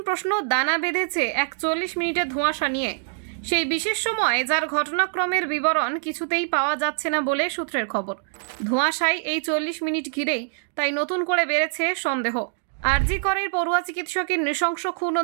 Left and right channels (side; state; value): left; silent; digital silence